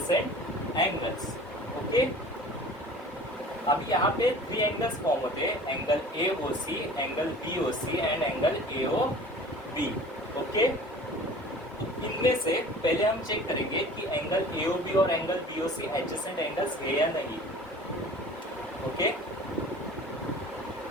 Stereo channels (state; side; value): normal; both; correlation 0.44